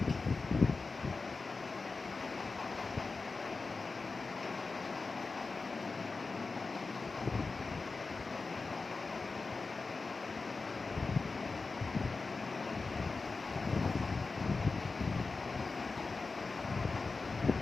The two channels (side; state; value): right; quieter; 4.0 dB